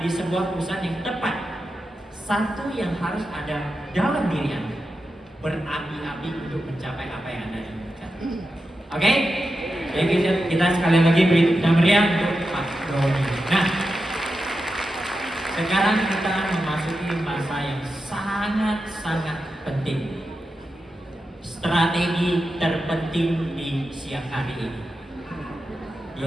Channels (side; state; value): both; normal; correlation 0.90